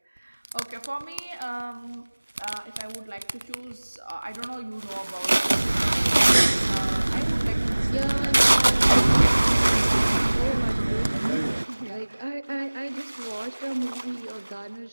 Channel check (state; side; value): inverted; both; correlation -1.00